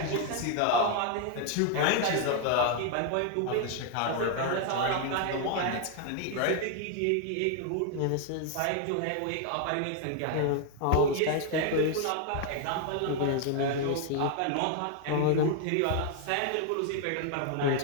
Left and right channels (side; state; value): both; different; correlation 0.00